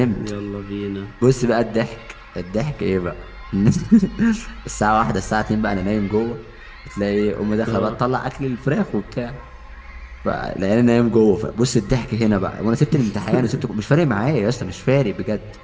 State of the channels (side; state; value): both; identical; correlation 1.00